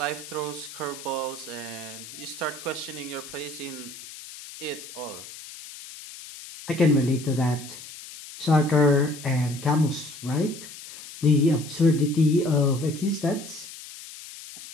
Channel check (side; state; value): left; noise; hiss, 14 dB below the sound